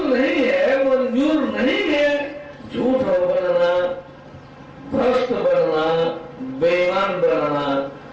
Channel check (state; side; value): identical; both; correlation 1.00